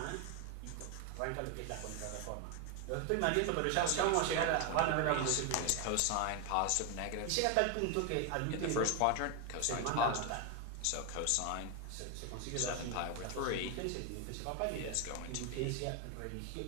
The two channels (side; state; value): both; different; correlation 0.01